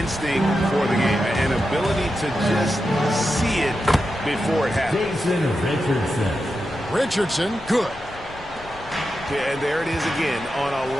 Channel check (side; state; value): left; noise; rumble, 19 dB below the sound